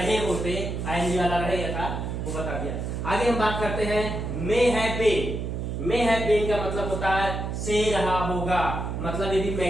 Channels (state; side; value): noise; right; hum, 4 dB below the sound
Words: होते। आईएनजी वाला रहेगा था, वो बता दिया। आगे हम बात करते हैं मे हैव बीन का मतलब होता है से रहा होगा, मतलब ये भी